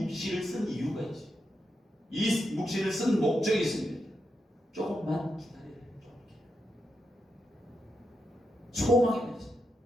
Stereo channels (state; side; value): normal; both; correlation 0.85